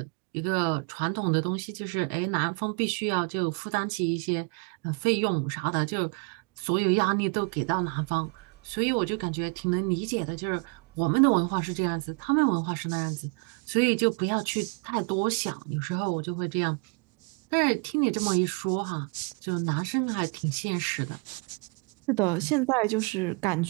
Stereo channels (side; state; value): left; quieter; 34.8 dB